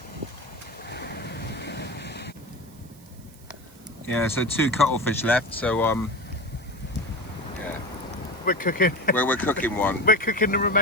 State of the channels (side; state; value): right; noise; hiss, 25 dB below the sound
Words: Yeah, so 2 cuttlefish left, so yeah. We're cooking. We're cooking one. We're cooking the